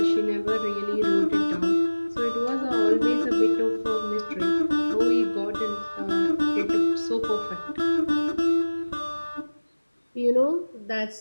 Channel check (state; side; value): inverted; both; correlation -1.00